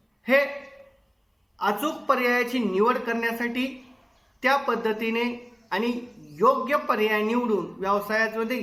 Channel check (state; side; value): identical; both; correlation 1.00